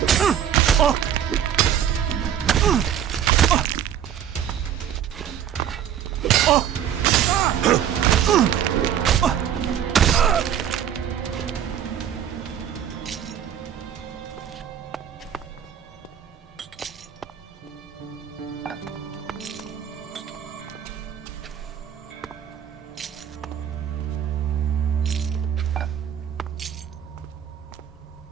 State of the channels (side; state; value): left; quieter; 9.6 dB